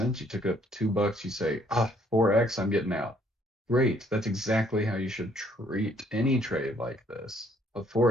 you took it up to $2, you say, 4x, I'm getting out. Great. That's exactly how you should treat any trade like this. A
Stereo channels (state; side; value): normal; both; correlation 0.65